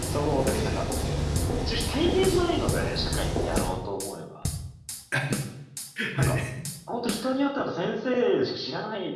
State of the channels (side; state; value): both; identical; correlation 1.00